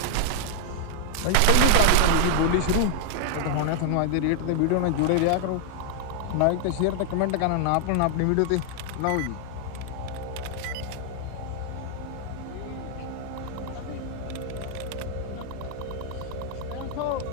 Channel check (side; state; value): both; different; correlation 0.00